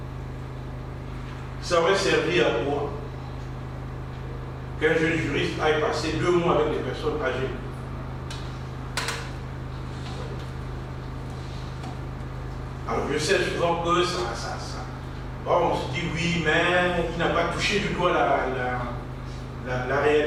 Ça aurait servi à quoi qu'un jeune juriste aille passer 2 mois avec des personnes âgées? Alors je sais souvent que bon, on se dit oui, mais il n'a pas touché du doigt la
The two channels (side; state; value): both; identical; correlation 1.00